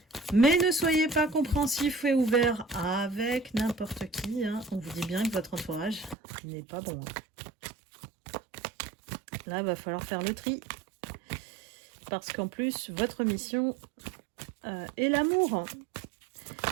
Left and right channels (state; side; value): drops out; left; at 6.2 s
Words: Mais ne soyez pas compréhensif et ouvert avec n'importe qui. Hein. On vous dit bien que votre entourage n'est pas bon. Là, il va falloir faire le tri. Parce qu'en plus, votre mission est l'amour.